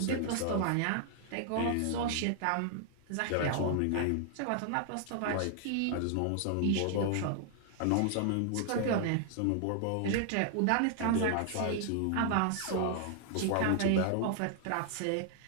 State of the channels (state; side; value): different; both; correlation 0.00